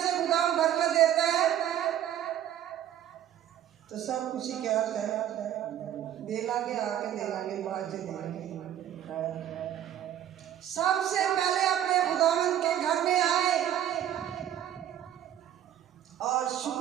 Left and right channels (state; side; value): quieter; left; 11.1 dB